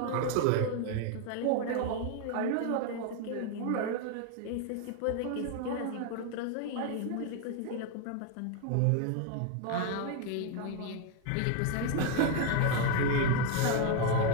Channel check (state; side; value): different; both; correlation 0.01